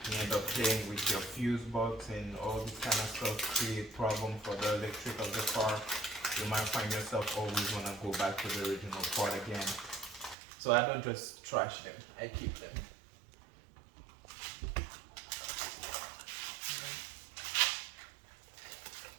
you end up playing with your fuse box and all this kind of stuff, create problem for the electric of the car. You might find yourself always want to go back to the original part again. So I don't just trash them, I keep them.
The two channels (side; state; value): left; drops out; at 10.4 s